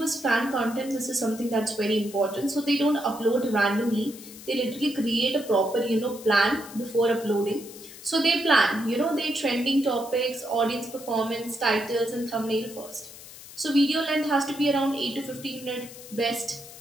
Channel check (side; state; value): left; noise; hiss, 16 dB below the sound